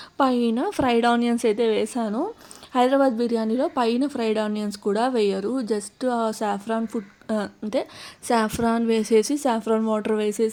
పైన ఫ్రైడ్ ఆనియన్స్ అయితే వేసాను. హైదరాబాద్ బిర్యానీలో పైన ఫ్రైడ్ ఆనియన్స్ కూడా వేయరు, జస్ట్ ఆ సాఫ్రాన్ ఫుడ్ అంటే సాఫ్రాన్ వేసేసి సాఫ్రాన్ వాటర్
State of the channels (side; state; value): both; identical; correlation 1.00